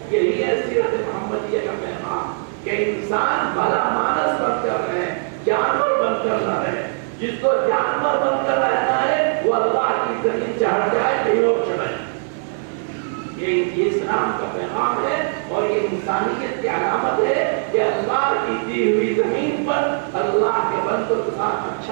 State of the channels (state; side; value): silent; left; 59 dB below the other